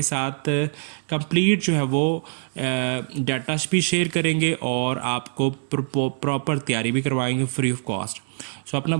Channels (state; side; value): silent; left; digital silence